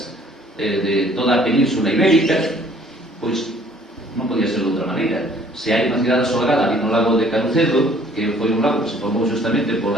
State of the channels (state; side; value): normal; both; correlation 0.57